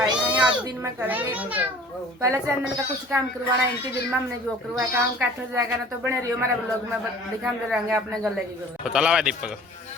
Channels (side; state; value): both; normal; correlation 0.47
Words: है आज दिन में करेंगे पहले चैनल का कुछ काम करवाना इनकी दिन में हमने जो करवाया काम काठल जाएगा ना तो बने रही हमारे ब्लॉग में दिखाते रहेंगे अपने गले की तो चला हुआ दीपक